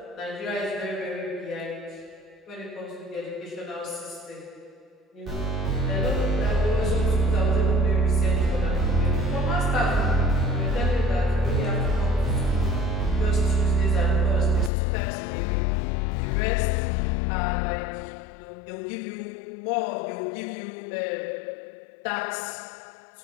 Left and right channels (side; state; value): right; drops out; at 14.7 s